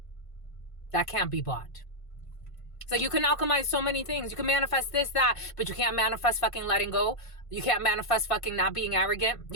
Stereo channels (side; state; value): right; late; 1.5 ms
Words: That can't be bought. So you can alchemize so many things. You can manifest this, that, but you can't manifest fucking letting go. You can't manifest fucking not being arrogant.